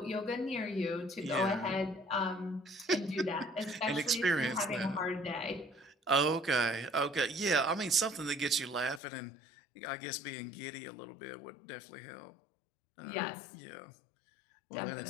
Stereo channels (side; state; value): right; drops out; at 9.0 s